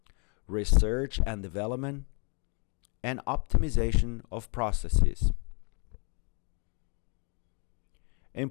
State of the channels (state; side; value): quieter; right; 37.2 dB